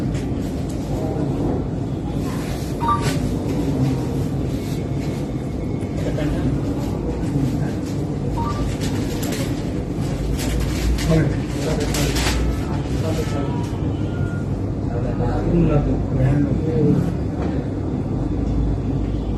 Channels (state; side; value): identical; both; correlation 1.00